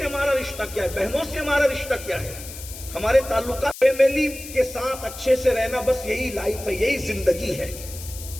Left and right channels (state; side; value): noise; left; hiss, 13 dB below the sound